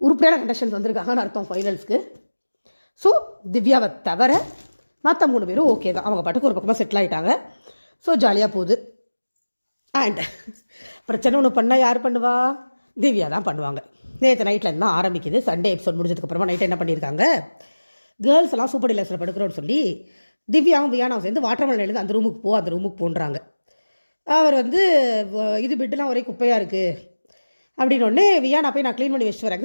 கண்டெஸ்டன்ஸ் வந்திருக்காங்கன்னு அர்த்தம் ஃபைனல்ஸ்க்கு. ஸோ திவ்யாவை தவிர மற்ற 3 பேரும் ஓகே தான், அவங்க பாட்டுக்கு ஒரு பக்கமாக செட்டில் ஆகிட்டாங்க. ஸோ ஜாலியாக போகுது. அண்ட் பிரச்சனை ஒன்று பண்ணால் யார் பண்ணுவா? திவ்யா தான் பண்ணுவாங்க. நேற்று நைட்லேருந்து தான் ஆரம்பிக்குது. சண்டே எபிசோட் முடிஞ்சதுக்கப்புறமா நைட்டு என்ன பண்ணியிருக்காங்க, கேர்ள்ஸ் எல்லாம் சூப்பர் டீலக்ஸில் படுக்கிறோன்னு சொல்லி திவ்யாவும் வியானாவும் சேர்ந்து வாட்டர்மெலன் எழுந்து அந்த ரூமுக்கு போன்றாங்க. அவர் வந்து இது பெட்டெலாம் ஒரே குப்பையாக இருக்குது அப்படின்னு ஒன்று வியானா போய் நான் க்ளீன் பண்ணி வச்சுட்டு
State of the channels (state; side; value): inverted; both; correlation -1.00